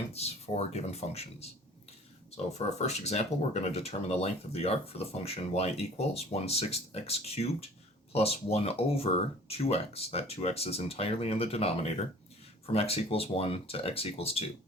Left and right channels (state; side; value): normal; both; correlation 0.48